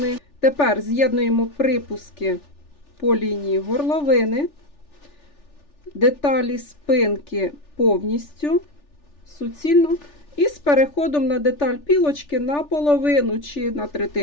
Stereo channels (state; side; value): late; right; 3.4 ms